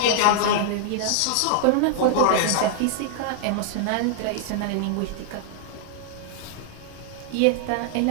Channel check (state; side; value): different; both; correlation -0.01